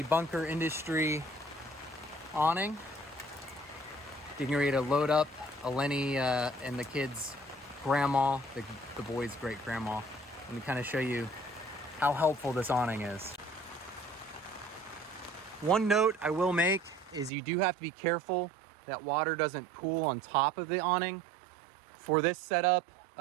bunker industry awning, getting ready to load up Eleni and the kids' grandma, the boys' great grandma. Let me kind of show you how helpful this awning is. One note I will make is you do have to be careful that water doesn't pool on top of the awning. For this setup,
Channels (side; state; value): left; drops out; at 17.3 s